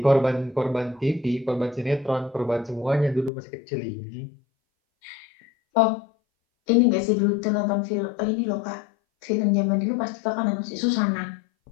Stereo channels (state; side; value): drops out; right; at 3.3 s